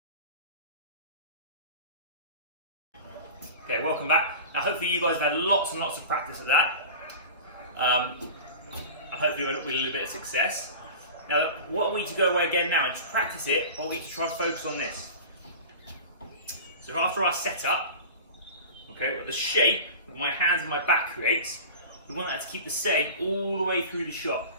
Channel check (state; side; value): inverted; both; correlation -0.34